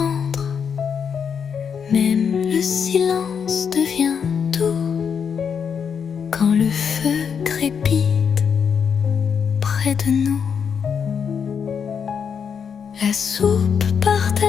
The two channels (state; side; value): quieter; right; 6.9 dB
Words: Même le silence devient doux quand le feu crépite près de nous. La soupe